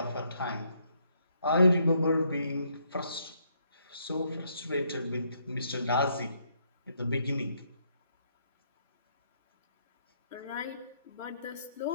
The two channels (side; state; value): both; inverted; correlation -0.72